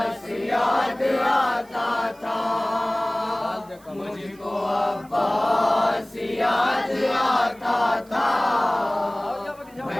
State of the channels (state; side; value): noise; right; hiss, 27 dB below the sound